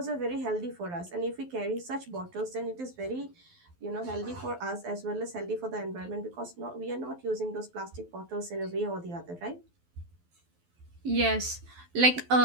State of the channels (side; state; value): left; late; 12 ms